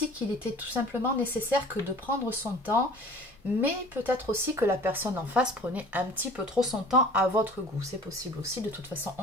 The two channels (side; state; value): both; normal; correlation 0.46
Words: qu'il était tout simplement nécessaire que de prendre son temps, mais peut-être aussi que la personne en face prenait un petit peu trop son temps à votre goût. C'est possible aussi, de toute façon,